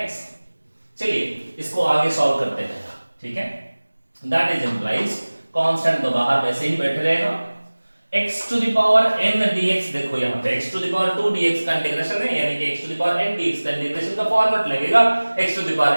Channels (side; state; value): both; inverted; correlation -1.00